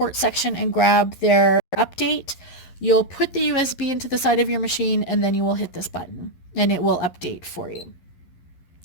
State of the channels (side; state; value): right; late; 11 ms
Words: section and grab their update. You'll put the USB into the side of your machine and then you will hit this button and it will update for you.